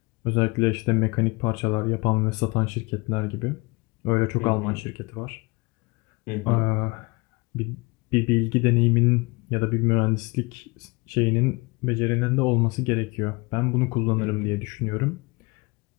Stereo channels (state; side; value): quieter; right; 26.2 dB